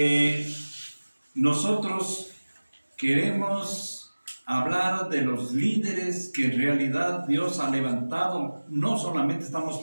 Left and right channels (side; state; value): both; inverted; correlation -1.00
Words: nosotros queremos hablar de los líderes que en realidad Dios ha levantado. No solamente estamos